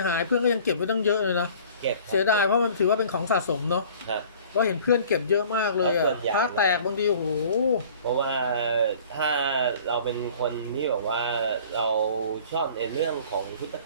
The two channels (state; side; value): inverted; both; correlation -0.49